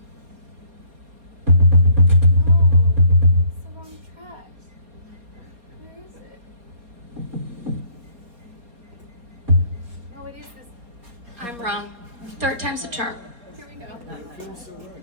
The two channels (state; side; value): late; left; 4.2 ms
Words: No, it's the wrong track. Where is it? Oh, it is this. I'm wrong. Third time's the charm. Here we go. Guys, I got this.